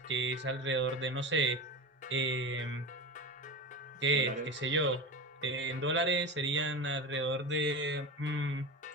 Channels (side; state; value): both; normal; correlation 0.26